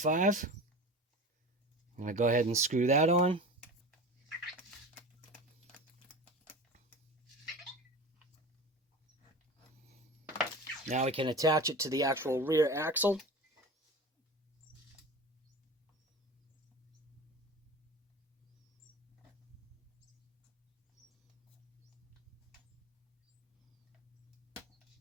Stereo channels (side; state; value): both; normal; correlation 0.33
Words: I'm going to go ahead and screw that on. Now we can attach it to the actual rear axle.